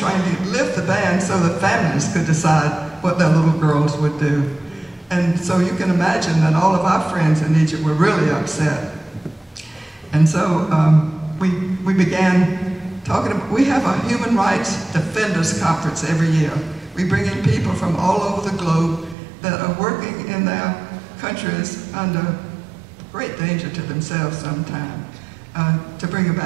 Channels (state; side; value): drops out; left; at 19.2 s